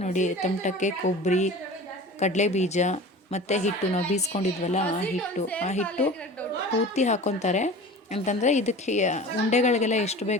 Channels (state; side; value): normal; both; correlation 0.37